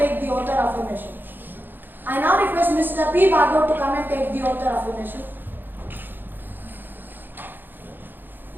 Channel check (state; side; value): late; left; 0.093 ms